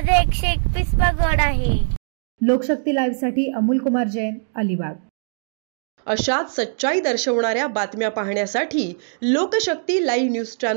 121वा गड आहे। लोकशक्ती लाईव्ह साठी अमोल कुमार जैन, अलिबाग। अशाच सच्चाई दर्शवणाऱ्या बातम्या पाहण्यासाठी लोकशक्ती लाईव्ह न्यूज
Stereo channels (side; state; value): left; silent; digital silence